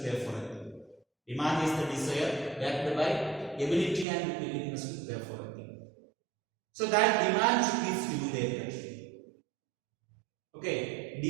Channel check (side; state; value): left; drops out; at 4.0 s